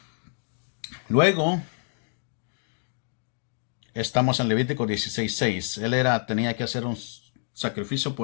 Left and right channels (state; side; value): silent; right; 60 dB below the other